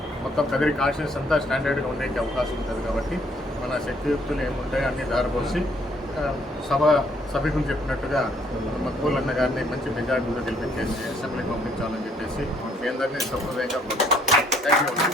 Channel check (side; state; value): both; normal; correlation 0.66